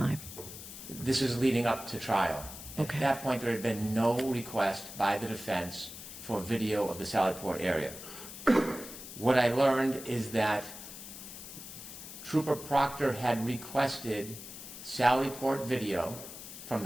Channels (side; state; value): left; noise; hiss, 12 dB below the sound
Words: This is leading up to trial. Okay. At that point, there had been no request by the defense for video of the Sallyport area. What I learned is that Trooper Proctor had requested Sallyport video from